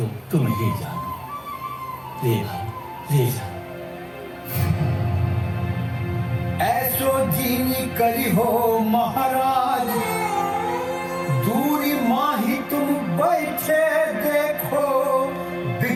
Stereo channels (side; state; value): both; identical; correlation 1.00